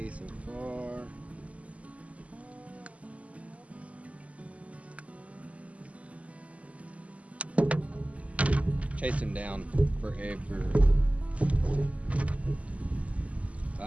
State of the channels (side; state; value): left; late; 0.067 ms